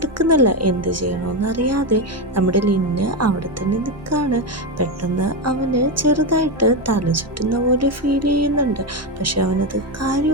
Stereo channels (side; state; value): both; normal; correlation 0.11